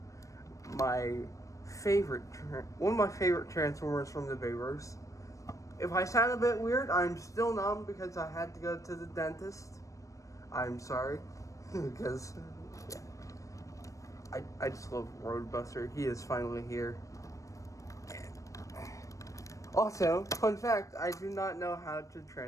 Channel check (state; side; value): late; right; 0.16 ms